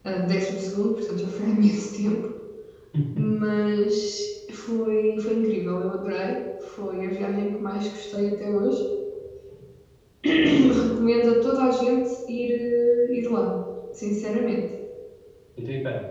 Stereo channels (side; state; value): both; identical; correlation 1.00